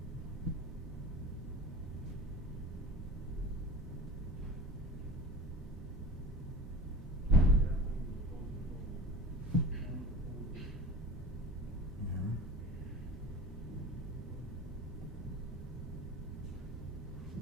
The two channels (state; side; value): normal; both; correlation 0.35